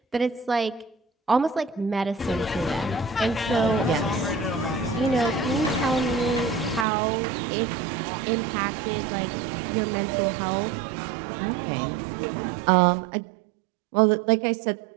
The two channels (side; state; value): left; drops out; at 6.9 s